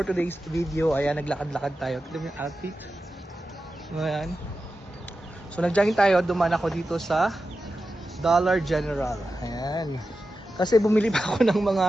video, ayan, naglakad-lakad tayo. Tignan mo yung outfit. Ayan. So nag-jogging tayo, dumaan ako dito sa Dollar General. Ayan. Kasi bumili pa ako ng mga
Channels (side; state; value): both; normal; correlation 0.91